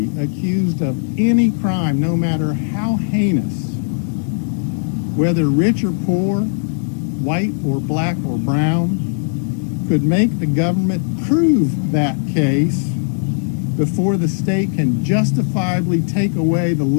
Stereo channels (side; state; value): right; silent; digital silence